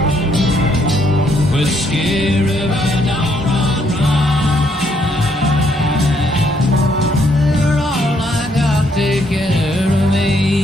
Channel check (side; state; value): both; normal; correlation 0.71